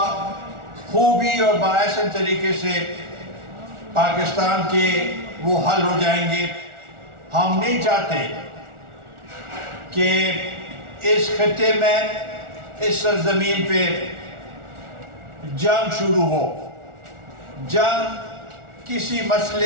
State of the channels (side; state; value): left; late; 1.4 ms